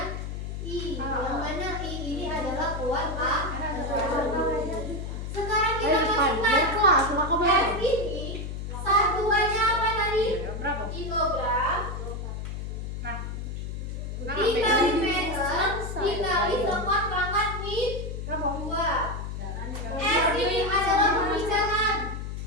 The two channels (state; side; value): noise; left; hum, 6 dB below the sound